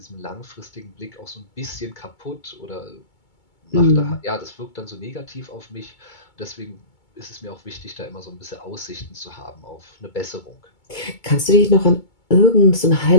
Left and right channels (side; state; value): right; late; 2.2 ms